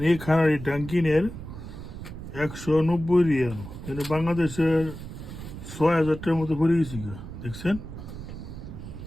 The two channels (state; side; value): noise; right; rumble, 11 dB below the sound